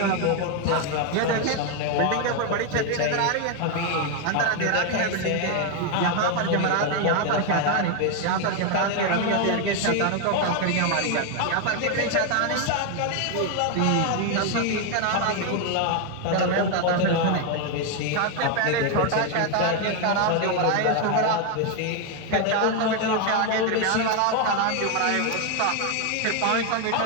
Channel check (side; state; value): both; different; correlation 0.01